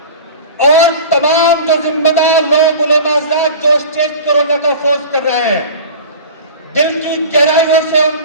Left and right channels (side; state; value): both; inverted; correlation -0.37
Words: اور تمام جو ذمہ دار لوگ علماء حضرات جو اسٹیج کورونا کا فروز کر رہے ہیں، دل کی گہرائیوں سے ان